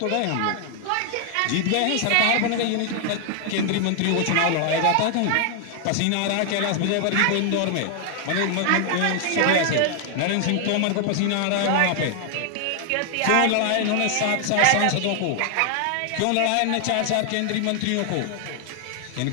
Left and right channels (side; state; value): both; different; correlation 0.00